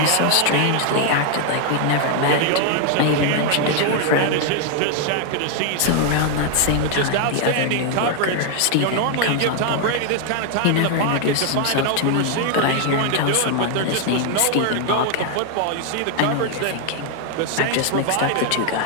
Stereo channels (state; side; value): different; both; correlation 0.00